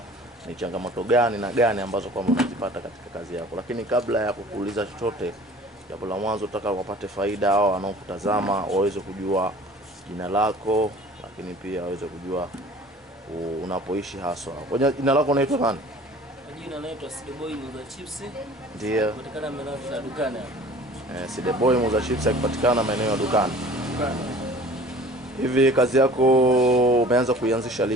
ni changamoto gani na gani ambazo kwamba unazipata katika kazi yako. Lakini kabla ya kukuuliza chochote, jambo la mwanzo nataka wapate faida hao wanaokutazama waweze kujua jina lako, lakini pia waweze kujua unapoishi haswa. Kwa jina lako unaitwa nani? Jina naitwa Sideboy Muuza Chips. Ndiyo. Kupatikana maeneo ya dukani. Sideboy Muuza Chips akipatikana maeneo ya dukani. Dukani. Hivi kazi yako umeanza kuianzisha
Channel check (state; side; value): normal; both; correlation 0.46